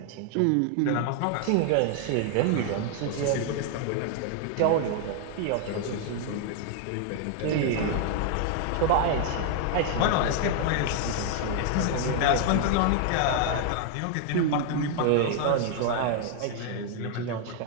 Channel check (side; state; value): both; different; correlation 0.00